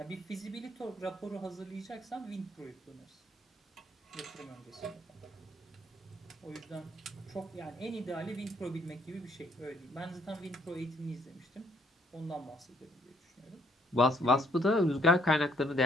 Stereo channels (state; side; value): normal; both; correlation 0.67